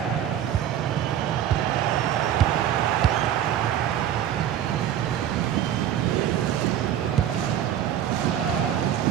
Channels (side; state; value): left; quieter; 10.5 dB